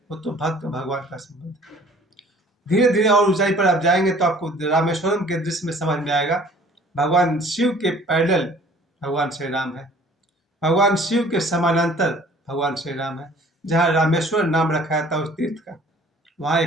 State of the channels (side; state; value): both; normal; correlation 0.52